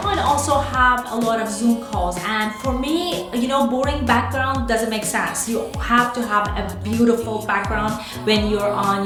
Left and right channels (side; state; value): both; identical; correlation 1.00